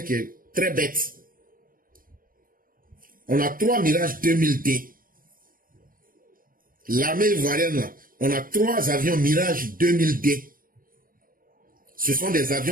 qui est très bête. On a 3 Mirage 2000D. L'armée ivoirienne, on a 3 avions Mirage 2000D. Ce sont des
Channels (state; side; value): late; left; 0.41 ms